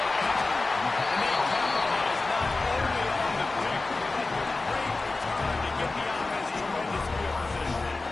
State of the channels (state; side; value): quieter; right; 3.4 dB